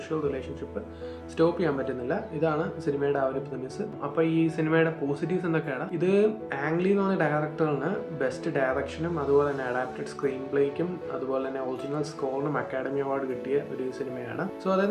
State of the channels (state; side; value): identical; both; correlation 1.00